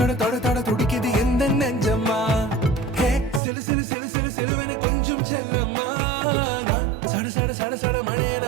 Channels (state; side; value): drops out; left; at 3.4 s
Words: தொட தொட துடிக்குது எந்த நெஞ்சம்மா ஹே சிலு சிலு சிலு சிலு சிலுவன கொஞ்சம் செல்லம்மா நான் சட சட சட சட